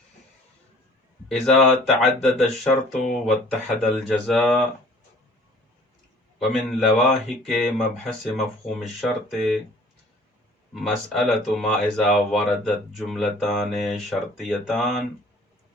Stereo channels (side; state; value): both; normal; correlation 0.51